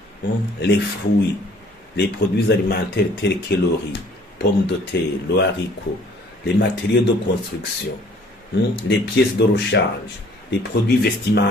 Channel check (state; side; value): normal; both; correlation 0.56